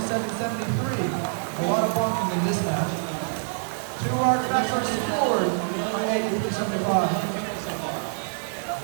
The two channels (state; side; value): silent; left; digital silence